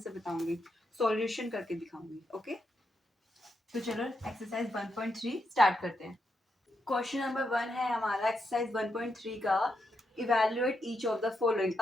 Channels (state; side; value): normal; both; correlation 0.83